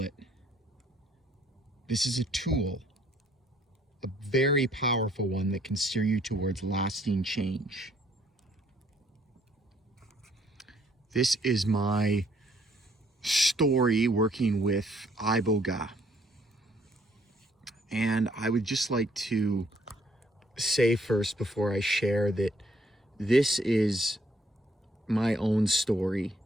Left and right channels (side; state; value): both; normal; correlation 0.66